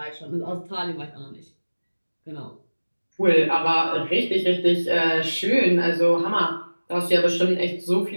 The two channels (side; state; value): both; inverted; correlation -1.00